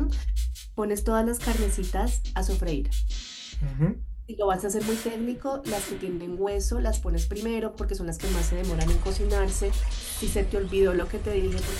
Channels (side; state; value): both; identical; correlation 1.00